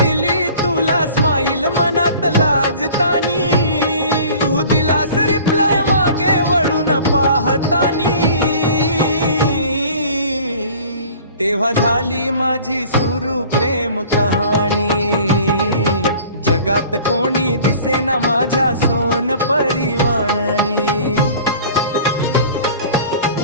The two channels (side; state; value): both; inverted; correlation -0.46